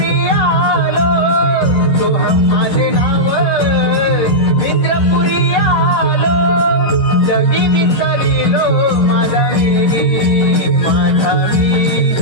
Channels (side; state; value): right; late; 11 ms